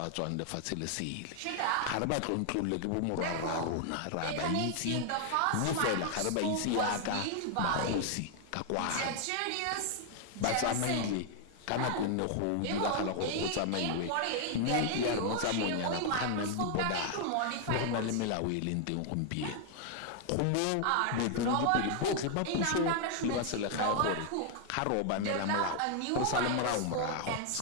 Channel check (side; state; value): both; different; correlation 0.00